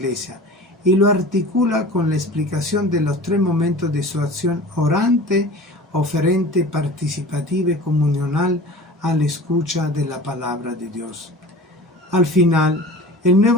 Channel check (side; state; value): both; normal; correlation 0.39